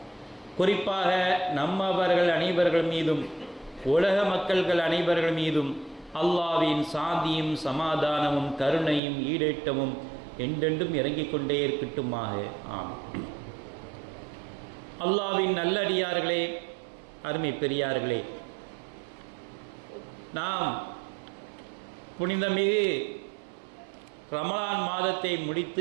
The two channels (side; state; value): left; drops out; at 9.0 s